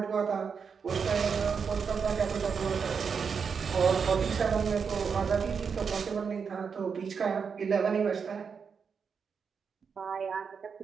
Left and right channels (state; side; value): quieter; left; 6.1 dB